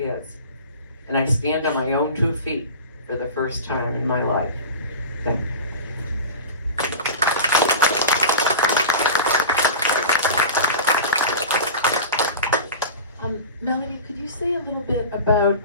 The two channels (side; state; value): both; inverted; correlation -0.31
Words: And I stand on my own 2 feet for the first time in my life. Thank you. Melody, could you say a little bit about